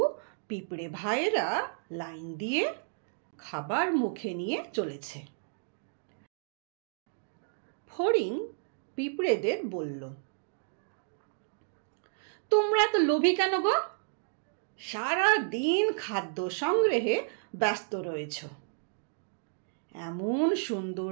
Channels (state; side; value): silent; left; digital silence